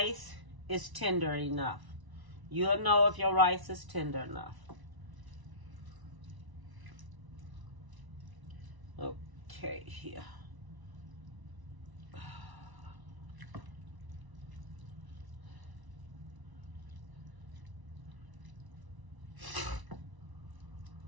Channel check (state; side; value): late; left; 1.0 ms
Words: is tender enough. You'll know if your rice is tender enough. Okay, here.